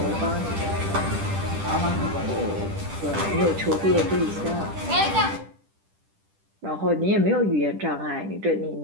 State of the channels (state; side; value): late; left; 10 ms